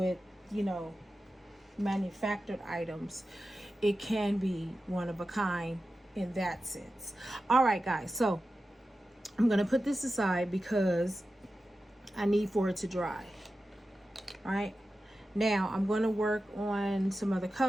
you know, manufactured items, it can be one of a kind in that sense. All right, guys, so I'm gonna put this aside because I need for it to dry. All right, now I'm going to work on some other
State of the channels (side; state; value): both; normal; correlation 0.92